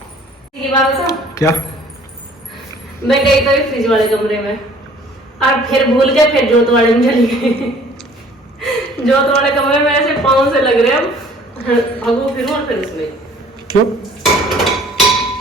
की बात बताऊं? क्या? मैं गई तो फ्रिज वाले कमरे में और फिर भूल के फिर जोत वाले में चली गई। जोत वाले कमरे में ऐसे पाँव से लग रहे हैं, भगो फिर और फिर उसमें क्यों?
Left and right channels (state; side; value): normal; both; correlation 0.54